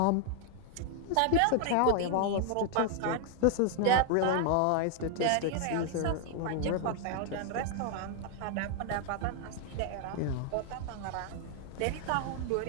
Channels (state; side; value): different; both; correlation 0.00